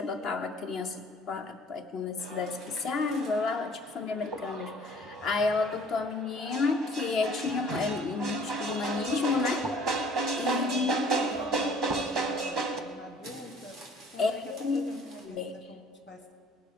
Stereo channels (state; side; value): normal; both; correlation 0.53